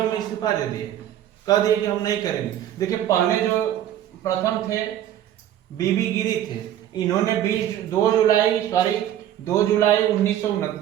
इस्तीफा दे दिए, कह दिए कि हम नहीं करेंगे। देखिए, पहले जो प्रथम थे बीबी गिरी थे, इन्होंने 2 जुलाई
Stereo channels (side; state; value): left; quieter; 11.5 dB